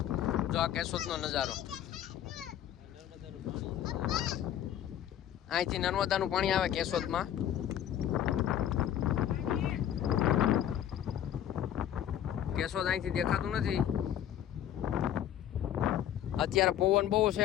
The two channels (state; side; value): quieter; right; 10.9 dB